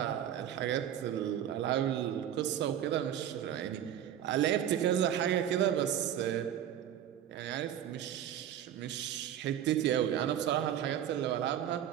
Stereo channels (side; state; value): left; quieter; 10.5 dB